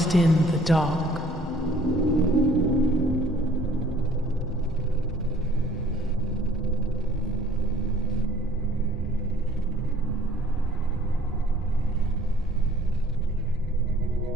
in the dark.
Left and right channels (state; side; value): normal; both; correlation 0.56